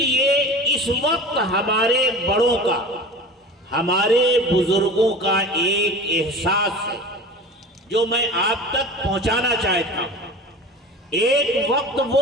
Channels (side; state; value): both; normal; correlation 0.36